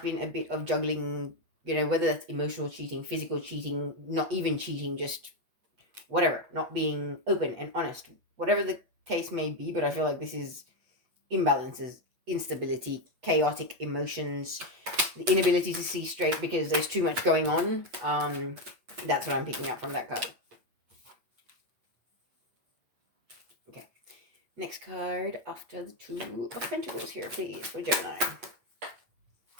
a bit of juggling, whether that's emotional cheating, physical cheating, not even cheating, just whatever, not being open and honest, whatever the case may be. But I feel like this is imbalances, instability, chaotic emotions, the inability to see straight because there's too much going on. That's what I'm picking up from that card. Okay. Next card after the 2 of Pentacles here, please, for Gemini.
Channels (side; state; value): left; late; 8.1 ms